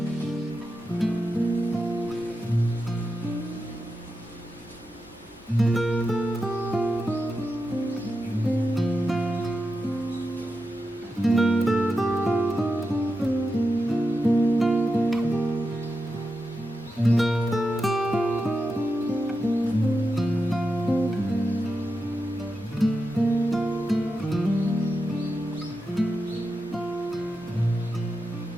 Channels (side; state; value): both; normal; correlation 0.89